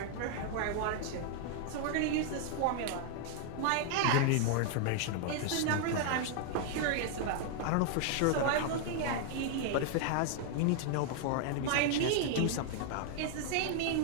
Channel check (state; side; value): different; both; correlation 0.00